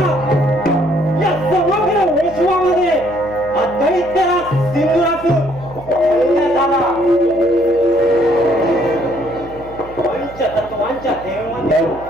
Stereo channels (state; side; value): noise; right; hum, 19 dB below the sound